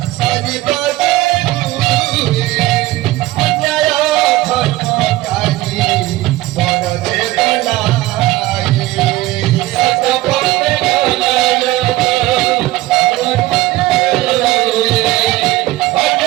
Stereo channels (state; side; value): quieter; left; 17.2 dB